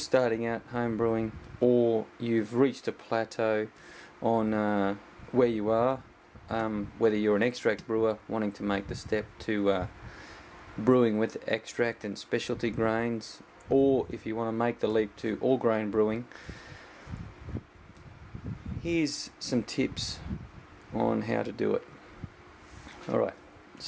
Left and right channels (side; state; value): both; identical; correlation 1.00